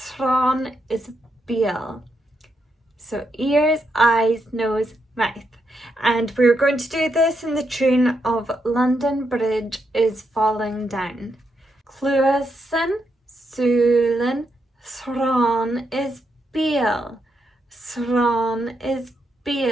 is Beal. So ears, eyes, nose, mouth. And we're going to do this in the tune of London Bridge is Falling Down. Cluasan, Sulin, Thron is Beal. Thron is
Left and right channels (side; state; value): both; normal; correlation 0.81